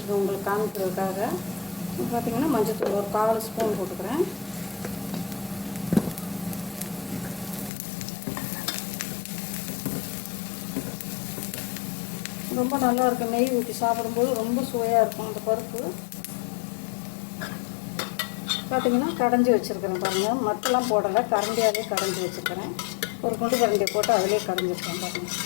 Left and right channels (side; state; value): right; drops out; at 7.7 s